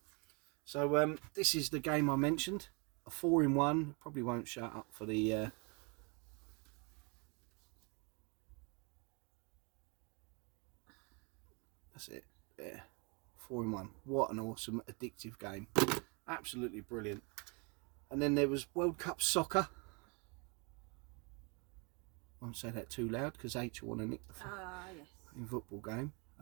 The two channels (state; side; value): quieter; left; 32.7 dB